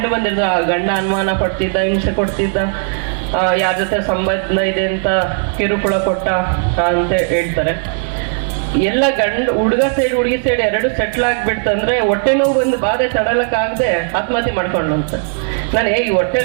ಬಂದಿರೋದು, ಗಂಡ ಅನುಮಾನ ಪಡ್ತಿದ್ದ, ಹಿಂಸೆ ಕೊಡ್ತಿದ್ದ, ಯಾರ ಜೊತೆ ಸಂಬಂಧ ಇದೆ ಅಂತ ಕಿರುಕುಳ ಕೊಟ್ಟ ಅಂತ ಹೇಳ್ತಾರೆ. ಎಲ್ಲ ಹುಡುಗ ಸೈಡ್ ಹುಡುಗಿ ಸೈಡ್ ಎರಡು ಸೆಟ್ಲ್ ಆಗ್ಬಿಡ್ತಂದ್ರೆ ಹೊಟ್ಟೆ ನೋವು ಬಂದು ಬಾಧೆ ತಡಲಕ್ಕಾಗದೆ ಆತ್ಮಹತ್ಯೆ ಮಾಡ್ಕೊಂಡು ಅಂತ. ನಾನು ಈ ಹೊಟ್ಟೆ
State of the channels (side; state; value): left; silent; 58 dB below the other